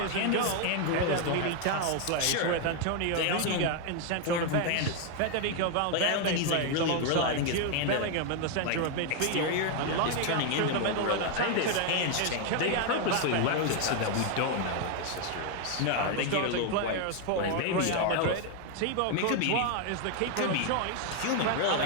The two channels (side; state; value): both; different; correlation 0.01